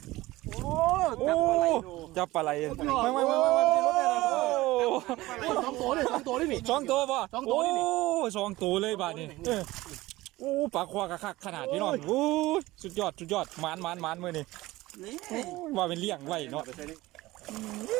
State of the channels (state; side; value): quieter; left; 18.5 dB